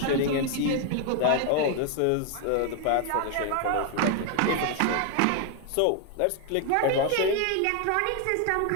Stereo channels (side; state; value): both; different; correlation 0.01